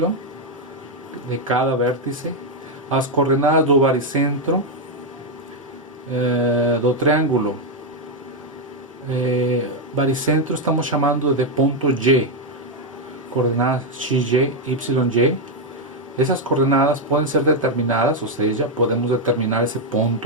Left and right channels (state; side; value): normal; both; correlation 0.02